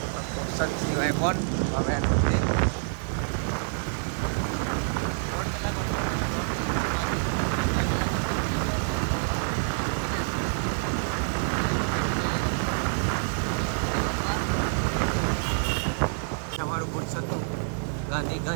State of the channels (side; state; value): left; silent; digital silence